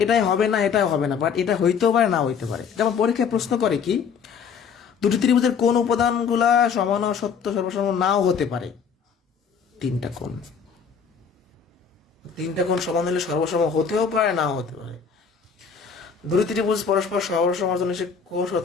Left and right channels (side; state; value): right; quieter; 6.5 dB